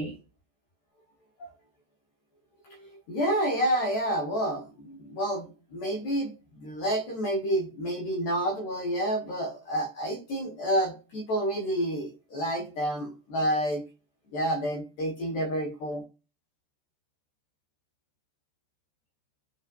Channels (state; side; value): late; right; 14 ms